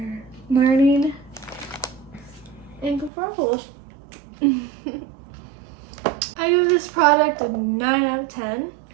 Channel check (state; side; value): drops out; left; at 3.1 s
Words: learning and good for apples. I give this product a 9 out of 10.